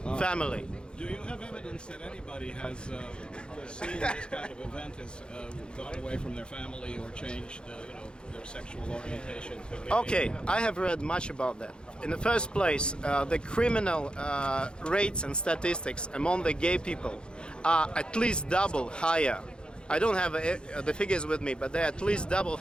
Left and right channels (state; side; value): late; right; 0.051 ms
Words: family. Do you have evidence that anybody who has seen this kind of event has gone away from their family or changed, their sexual orientation? Okay, I have read much about that. In the first place, the criminal rates and statistics among the gay people are at least double higher. I don't have the figures with me, but they're at least double